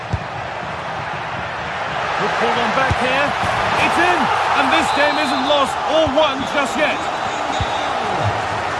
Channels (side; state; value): both; identical; correlation 1.00